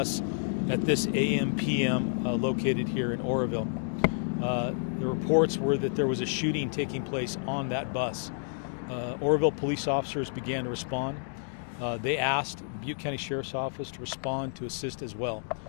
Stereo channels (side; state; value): right; silent; digital silence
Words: at this AM/PM located here in Oroville. The reports were that there was a shooting taking place on that bus. Oroville police officers began to respond. They asked Butte County Sheriff's Office to respond to assist as well.